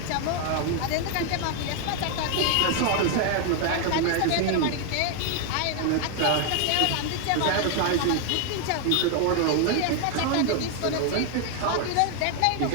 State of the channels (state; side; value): different; both; correlation 0.00